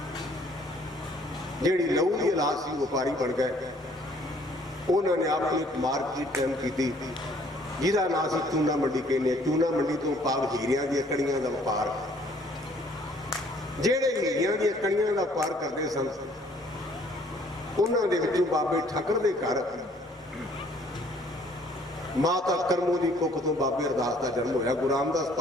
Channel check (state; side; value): normal; both; correlation 0.60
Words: जिहड़ी लहू की औलाद सी, व्यापारी बन गए। उन्होंने अपनी मार्केट टाइम की, जिसका नाम से चूना मंडी कहने। चूना मंडी तो भाव हीरिया दी कड़ियां का व्यापार। जेड़े हीरिया दी कड़ियां का व्यापार करते सन, उन्होंने विचों बाबे ठक्कर दे घर माता करमू की कुख तो बाबे अरदास का जन्म होया। गुरु रामदास